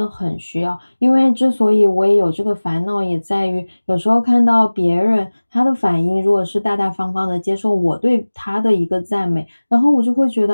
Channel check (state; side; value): inverted; both; correlation -1.00